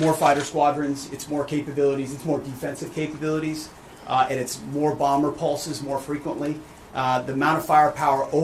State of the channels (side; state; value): both; identical; correlation 1.00